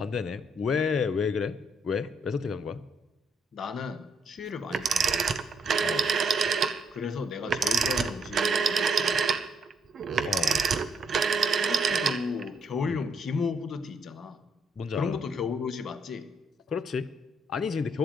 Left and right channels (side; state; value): both; normal; correlation 0.72